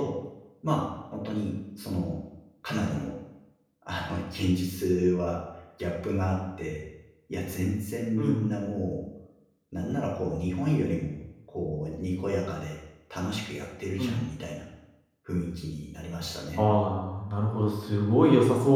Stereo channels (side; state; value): both; identical; correlation 1.00